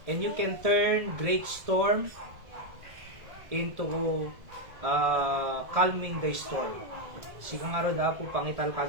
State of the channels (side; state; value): left; late; 1.7 ms